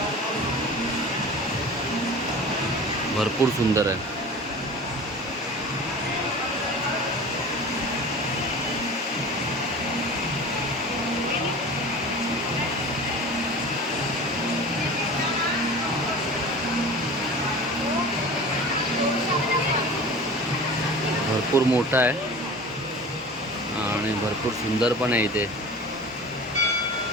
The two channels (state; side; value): normal; both; correlation 0.37